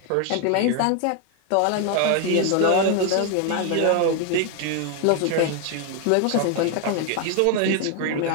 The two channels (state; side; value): different; both; correlation 0.01